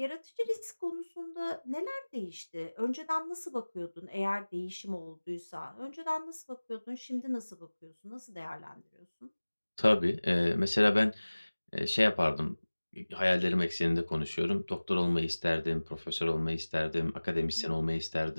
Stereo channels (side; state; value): both; inverted; correlation -1.00